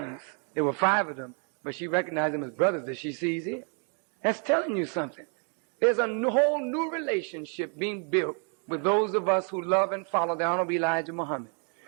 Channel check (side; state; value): left; quieter; 39.9 dB